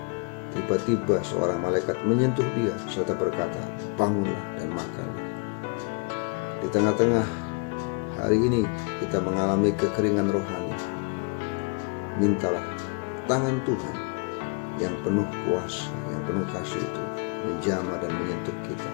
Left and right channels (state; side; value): quieter; right; 35.0 dB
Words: Tiba-tiba seorang malaikat menyentuh dia serta berkata, "Bangunlah dan makanlah." Di tengah-tengah hari ini kita mengalami kekeringan rohani, mintalah tangan Tuhan yang penuh kuasa, yang penuh kasih itu menjamah dan menyentuh kita,